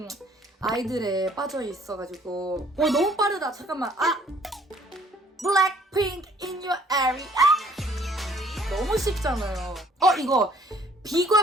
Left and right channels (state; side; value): normal; both; correlation 0.59